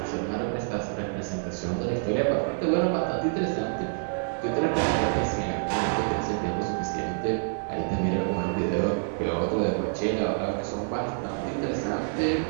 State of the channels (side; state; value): left; silent; digital silence